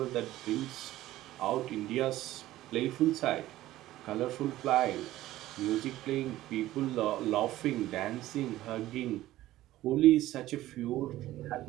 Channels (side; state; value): left; quieter; 15.2 dB